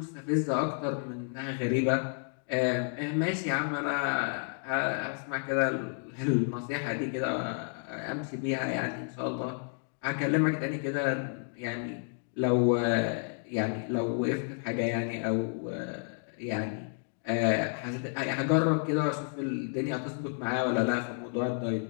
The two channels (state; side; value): silent; right; 57 dB below the other